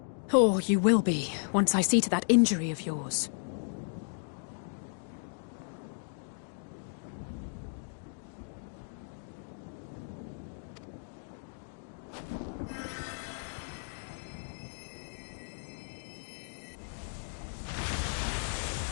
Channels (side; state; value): right; silent; digital silence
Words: Or you will be, once I see to that injury of yours.